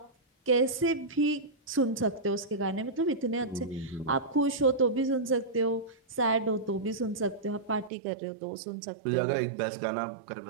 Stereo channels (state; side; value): drops out; left; at 7.9 s